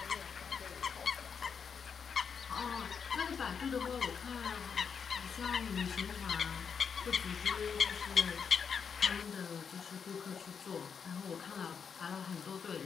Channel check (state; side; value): quieter; right; 6.5 dB